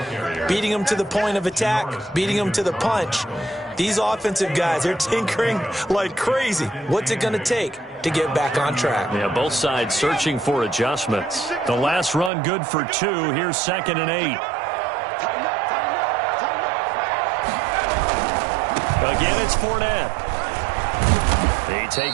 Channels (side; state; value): left; drops out; at 12.3 s